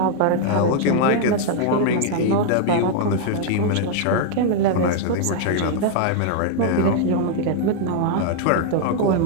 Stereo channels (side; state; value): both; different; correlation 0.00